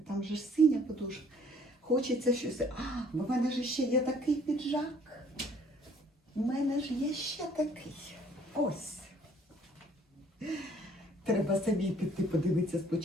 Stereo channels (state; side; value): normal; both; correlation 0.58